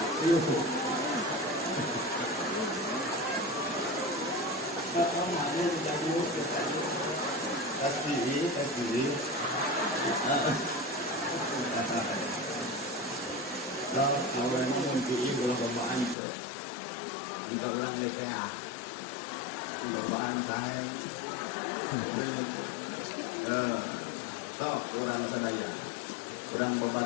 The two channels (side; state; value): right; drops out; at 16.2 s